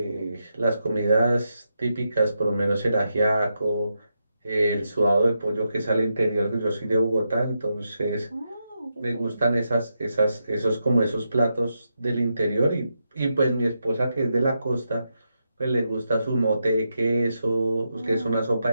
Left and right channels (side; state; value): both; inverted; correlation -0.85